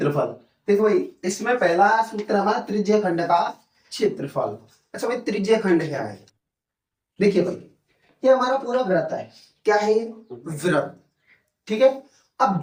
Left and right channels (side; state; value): both; identical; correlation 1.00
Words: देखो भाई, इसमें पहला सूत्र हमारा त्रिज्य खंड का क्षेत्रफल। अच्छा भाई, त्रिज्य खंड क्या है? देखिए भाई, ये हमारा पूरा व्रत है। क्या है ये? व्रत। ठीक है। अब